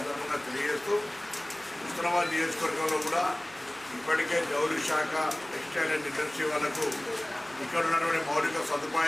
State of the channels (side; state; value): right; noise; hum, 26 dB below the sound